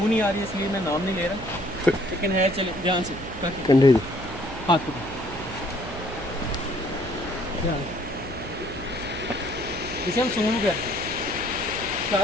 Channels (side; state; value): right; noise; hum, 11 dB below the sound